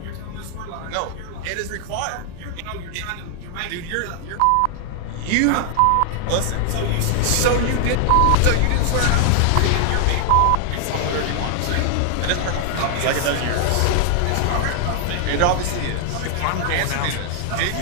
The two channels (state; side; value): different; both; correlation 0.00